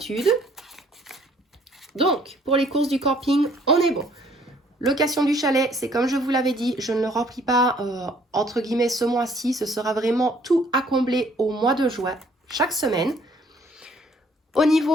Donc, pour les courses du camping, on est bon. Location du chalet, c'est comme je vous l'avais dit, je ne le remplis pas entre guillemets ce mois-ci. Ce sera vraiment tout à combler au mois de juin, chaque semaine. Au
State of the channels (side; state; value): both; normal; correlation 0.61